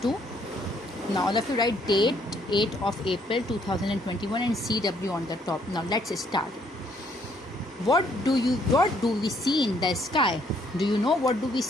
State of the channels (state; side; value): normal; both; correlation 0.67